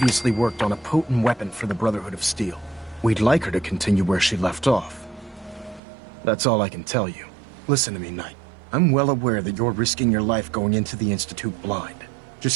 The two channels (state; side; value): drops out; left; at 5.8 s